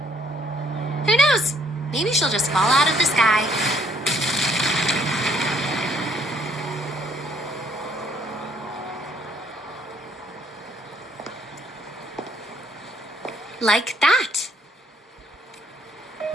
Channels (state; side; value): normal; both; correlation 0.65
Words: Who knows? Maybe she'll just fall out of the sky. Like that.